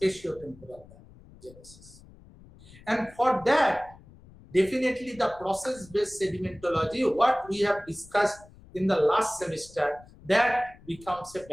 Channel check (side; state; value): left; noise; rumble, 23 dB below the sound